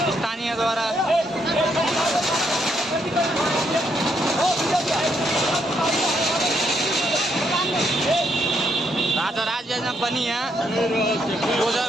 स्थानीयद्वारा राजभवनमा पनि यहाँ डोजर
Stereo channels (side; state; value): both; normal; correlation 0.75